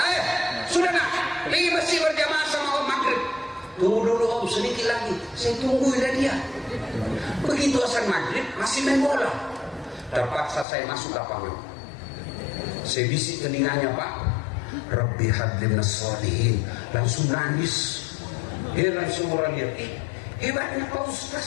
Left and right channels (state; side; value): drops out; right; at 10.7 s